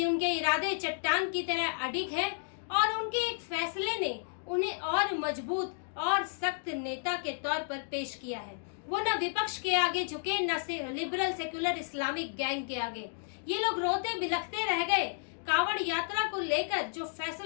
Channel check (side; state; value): right; silent; digital silence